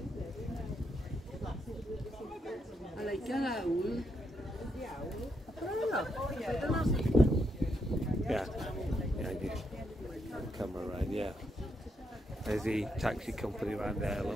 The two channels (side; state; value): both; normal; correlation 0.79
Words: I like that owl. Yeah. Yeah, you come around, yeah. There's the taxi company around there,